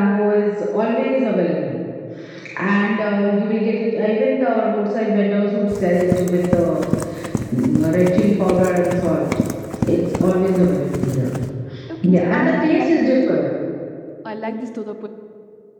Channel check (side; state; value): both; identical; correlation 1.00